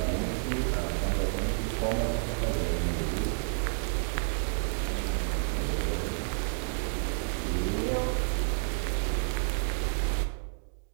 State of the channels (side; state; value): left; silent; digital silence